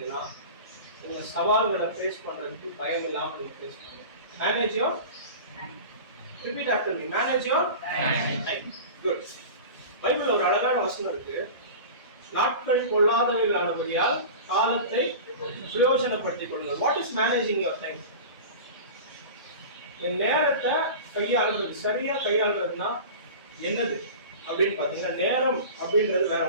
உங்க சவால்களை ஃபேஸ் பண்றதுக்கு பயம் இல்லாம நீங்க ஃபேஸ் பண்ணுங்க. Manage your Repeat after me. Manage your time. Good. பைபிள்ல ஒரு அழகான வசனம் இருக்கு. நாட்கள் கொள்ளாதவைகளானபடியால் காலத்தை பிரயோஜனப்படுத்திக் கொள்ளுங்கள். What is managing your time? இந்த நேரத்தை கையாளுறது, சரியா கையாளுறதுன்னா என்னது அப்படின்னு பாத்தீங்கன்னா, நேரம் அப்படின்றது வேற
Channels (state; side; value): inverted; both; correlation -0.34